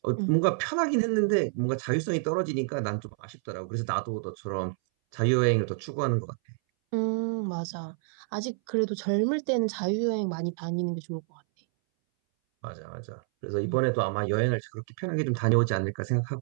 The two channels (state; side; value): silent; left; 59 dB below the other